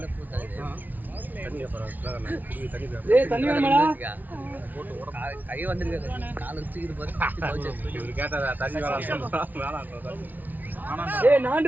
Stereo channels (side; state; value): left; late; 0.081 ms